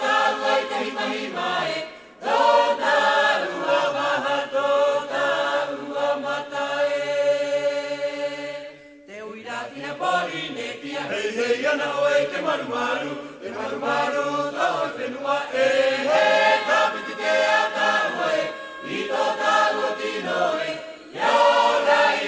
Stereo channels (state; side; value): identical; both; correlation 1.00